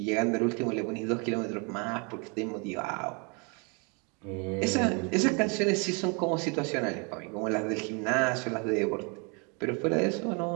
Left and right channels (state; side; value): quieter; left; 33.4 dB